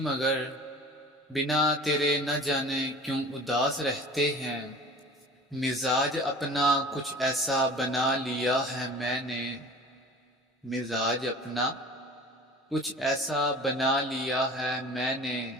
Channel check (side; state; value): both; normal; correlation 0.42